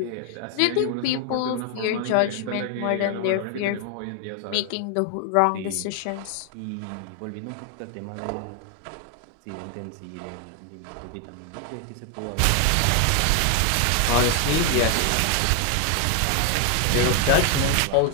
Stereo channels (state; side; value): different; both; correlation 0.00